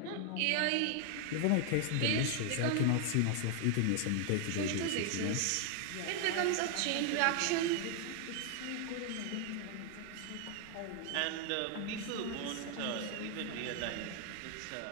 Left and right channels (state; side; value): different; both; correlation 0.00